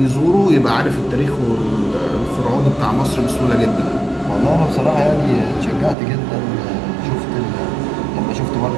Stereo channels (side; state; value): left; drops out; at 6.0 s